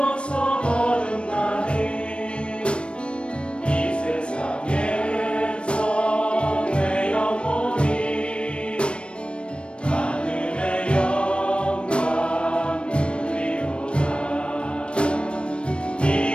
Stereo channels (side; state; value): right; late; 0.058 ms